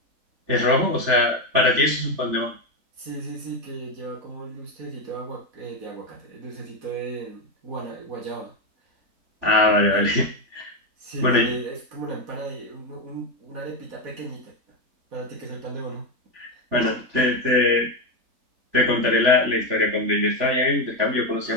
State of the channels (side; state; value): left; late; 3.4 ms